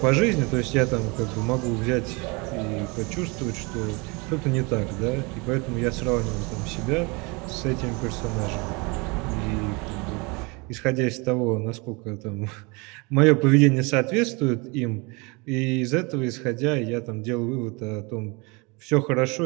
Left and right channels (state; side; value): quieter; left; 28.1 dB